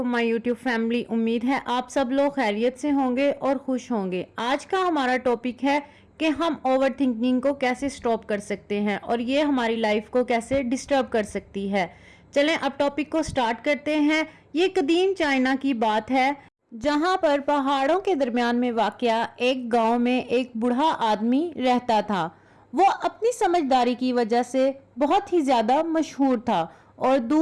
my YouTube family. उम्मीद है आप सब लोग खैरियत से होंगे और खुश होंगे। आज का हमारा टॉपिक है कि हम ओवर थिंकिंग को कैसे स्टॉप कर सकते हैं और ये हमारी लाइफ को कैसे डिस्टर्ब कर सकती है। चलें अब टॉपिक को स्टार्ट करते हैं। ये कदीम चाइना की बात है जहां पर पहाड़ों के दरमियान में वाक़या एक गांव में एक बूढ़ा आदमी रहता था। वो अपनी समझदारी की वजह से बहुत ही ज़्यादा मशहूर था और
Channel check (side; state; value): both; identical; correlation 1.00